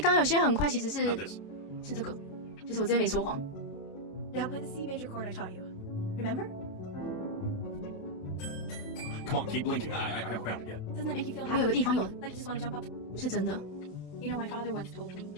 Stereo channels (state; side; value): late; right; 27 ms